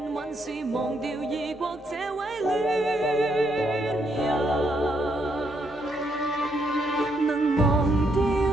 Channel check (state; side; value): normal; both; correlation 0.75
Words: 往事，忘掉異國這位戀人。能忘掉